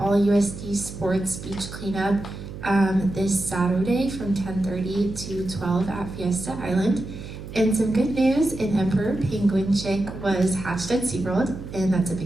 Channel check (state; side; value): noise; right; hum, 11 dB below the sound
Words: sports beach cleanup this Saturday from 10:30 to 12 at Fiesta Island. And some good news, an emperor penguin chick was hatched at SeaWorld, and that's a